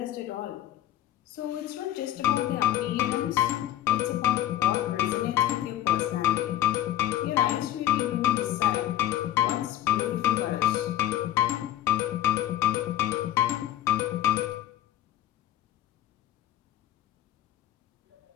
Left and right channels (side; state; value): right; quieter; 12.7 dB